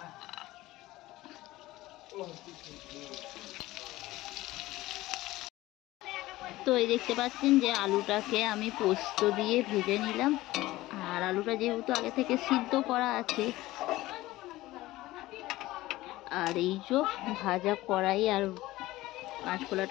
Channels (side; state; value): right; quieter; 17.6 dB